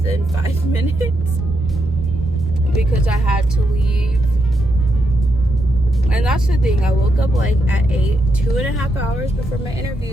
5 minutes because I had to leave. And that's the thing, I woke up like at 8, 2.5 hours before my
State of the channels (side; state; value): both; normal; correlation 0.82